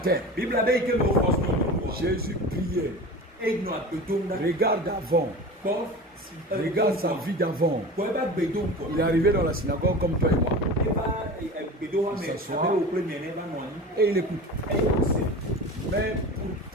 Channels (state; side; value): normal; both; correlation 0.33